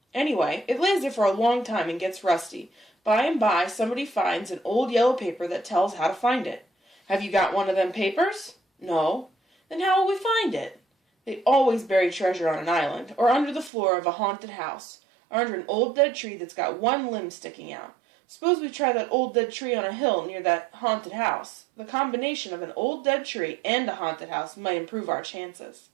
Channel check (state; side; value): drops out; left; at 13.7 s